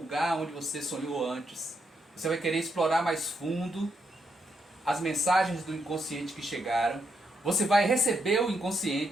onde você sonhou antes, você vai querer explorar mais fundo as mensagens do inconsciente que chegaram, você vai receber o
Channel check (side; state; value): both; normal; correlation 0.79